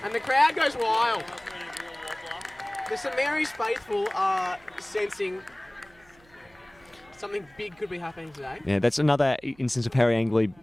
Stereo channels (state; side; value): noise; right; hum, 29 dB below the sound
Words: the crowd goes wild. The St Mary's faithful are sensing something big could be happening today. Yeah, that's another instance of Harry Angley